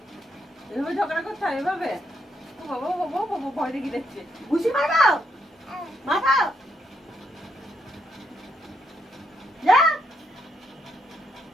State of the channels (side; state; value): both; normal; correlation 0.77